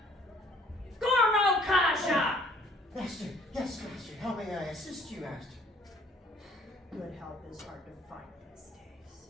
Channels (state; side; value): normal; both; correlation 0.57